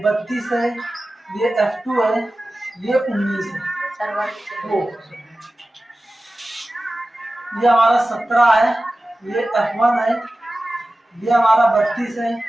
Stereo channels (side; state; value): both; normal; correlation 0.95